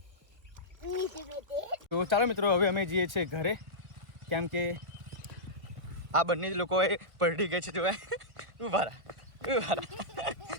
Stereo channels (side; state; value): left; late; 1.7 ms